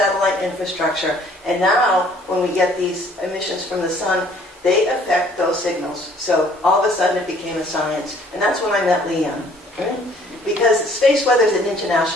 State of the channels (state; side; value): normal; both; correlation 0.58